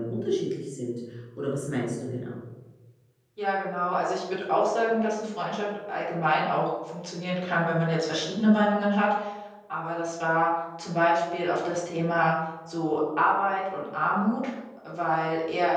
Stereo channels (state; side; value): identical; both; correlation 1.00